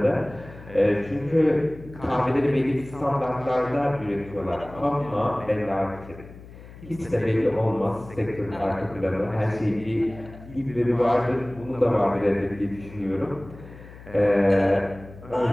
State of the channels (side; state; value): left; noise; hum, 18 dB below the sound